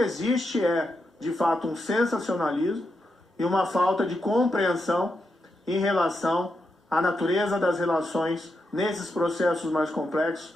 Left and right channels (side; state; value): both; normal; correlation 0.85